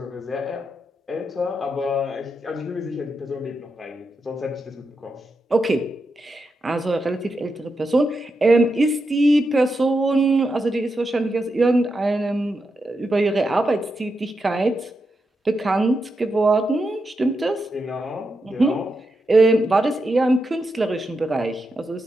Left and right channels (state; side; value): normal; both; correlation 0.86